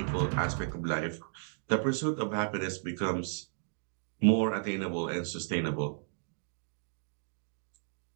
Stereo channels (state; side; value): silent; left; digital silence